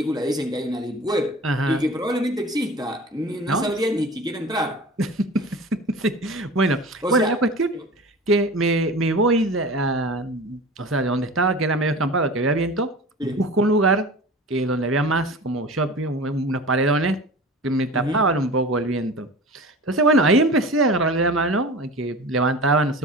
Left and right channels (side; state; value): both; normal; correlation 0.36